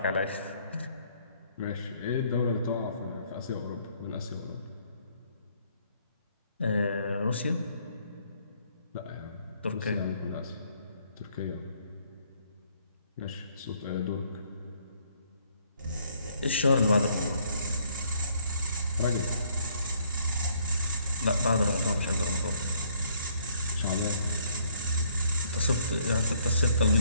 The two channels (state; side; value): inverted; both; correlation -0.64